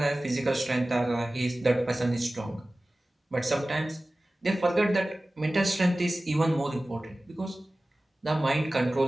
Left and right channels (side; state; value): both; normal; correlation 0.97